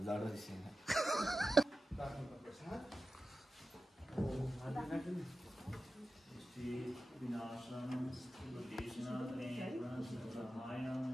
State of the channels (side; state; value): both; normal; correlation 0.93